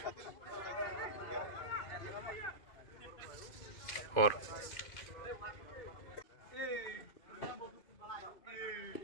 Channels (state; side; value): late; right; 2.5 ms